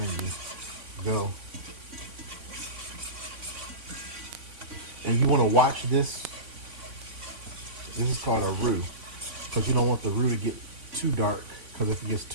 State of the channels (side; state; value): left; late; 3.4 ms